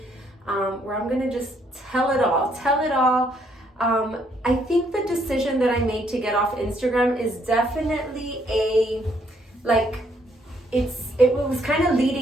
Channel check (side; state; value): both; normal; correlation 0.70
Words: where I'm going to just tell it all. I think the decision that I made to get off Instagram is definitely it was kind of